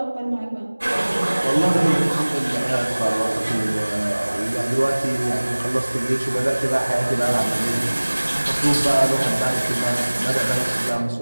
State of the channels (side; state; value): both; inverted; correlation -1.00